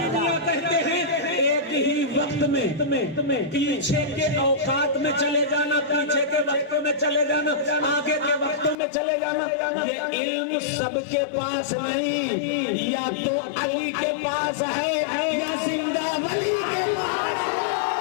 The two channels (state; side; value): drops out; right; at 8.8 s